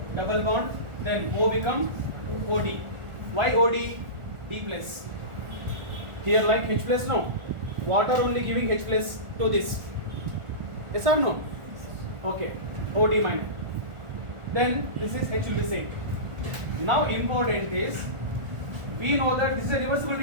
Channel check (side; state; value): left; late; 1.4 ms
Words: double bond, then O become OD. Why OD? D plus. Here like H plus, no. Water only giving H plus to this. Yes or no? Okay. OD minus. Then this is H will be same. Now important is, we know that this is a reversible